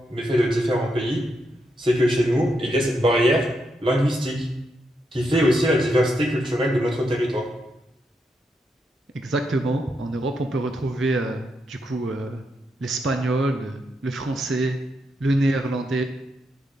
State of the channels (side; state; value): both; normal; correlation 0.82